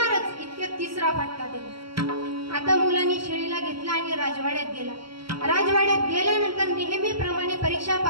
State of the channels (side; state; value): left; late; 0.74 ms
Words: इतक्यात तिसरा फटका दिला. आता मुलांनी शेळीला घेतला आणि राजवाड्यात गेला. राजवाड्यात गेल्यानंतर नेहमीप्रमाणे परीक्षा